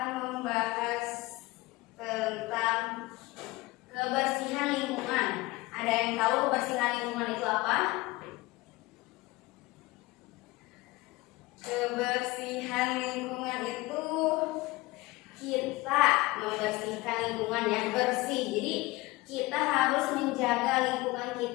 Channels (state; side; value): quieter; right; 20.8 dB